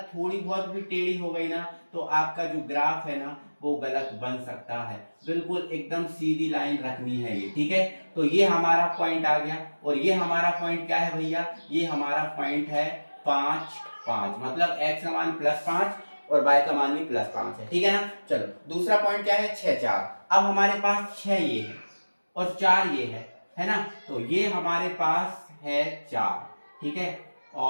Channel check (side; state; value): both; inverted; correlation -1.00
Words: थोड़ी बहुत भी टेढ़ी हो गई ना तो आपका जो ग्राफ है ना वो गलत बन सकता है। बिल्कुल एकदम सीधी लाइन रखनी है ये, ठीक है। तो ये हमारा पॉइंट आ गया, और ये हमारा पॉइंट क्या है भैया, ये हमारा पॉइंट है 5 5, मतलब x का मान +5 और y का मान भी +5 है, ठीक है ना। चलो दूसरा पॉइंट क्या है, 6 4। अब हमारे पास 6 ये है और 4 ये है ना। तो ये हमारे पास है 4, ठीक है,